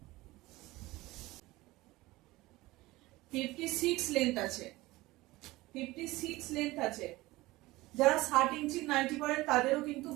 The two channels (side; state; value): left; quieter; 19.5 dB